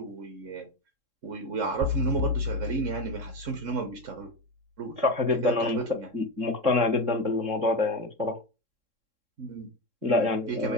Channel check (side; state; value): left; late; 3.7 ms